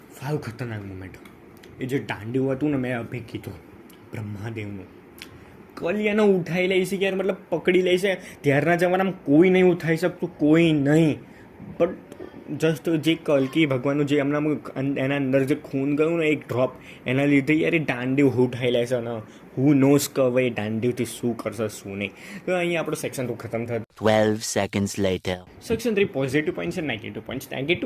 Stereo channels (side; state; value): both; identical; correlation 1.00